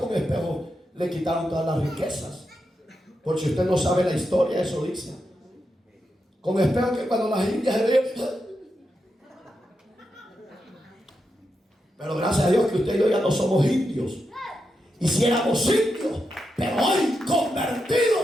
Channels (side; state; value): both; normal; correlation 0.86